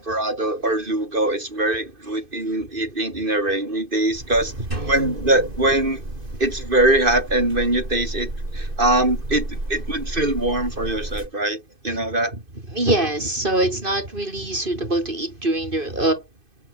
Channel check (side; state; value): left; late; 2.5 ms